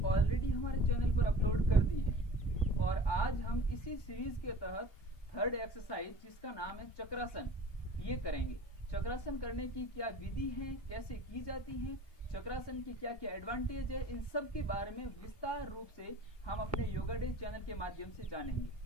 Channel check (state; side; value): late; right; 1.1 ms